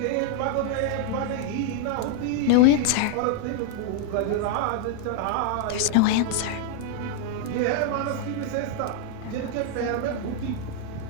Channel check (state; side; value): different; both; correlation 0.00